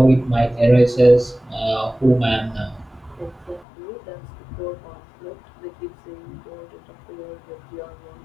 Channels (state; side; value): drops out; right; at 3.7 s